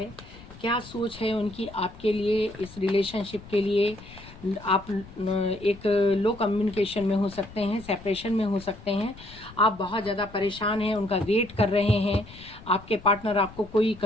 क्या सोच है उनकी आपके लिए, इस रिलेशनशिप के लिए। आप एक लो कम्युनिकेशन में हो सकते हैं, सेपरेशन में हो सकते हैं, आप बहुत ज़्यादा परेशान हैं, उनका वेट कर रहे हैं, आपके पार्टनर आपको कोई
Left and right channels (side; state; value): left; noise; rumble, 18 dB below the sound